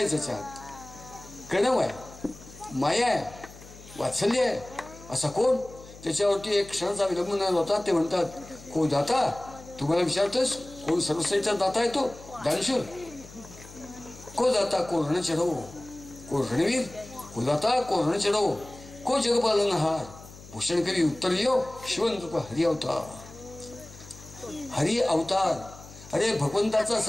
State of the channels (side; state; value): left; noise; hum, 18 dB below the sound